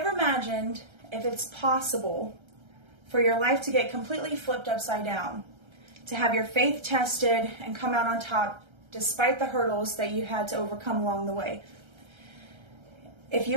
imagined if it's possible for your life to get completely flipped upside down, to have your faith tested and come out on top despite the hurdles that you had to overcome along the way? If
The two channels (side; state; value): left; late; 1.3 ms